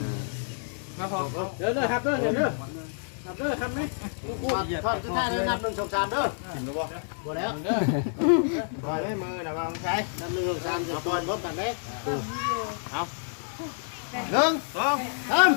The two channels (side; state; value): right; silent; 59 dB below the other